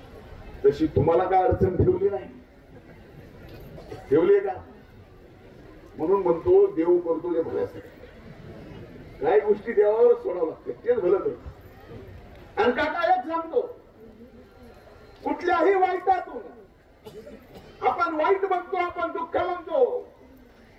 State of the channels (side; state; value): both; identical; correlation 1.00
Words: तशी तुम्हाला काय अडचण ठेवली नाही, ठेवली का? म्हणून म्हणतो देव करतो जे भल्यासाठी. काही गोष्टी देवावर सोडावं लागते, तेच भलं करतो. आणि काका एक सांगतो, कुठल्याही वाईटातून आपण वाईट म्हणतो, आपण दुःख म्हणतो,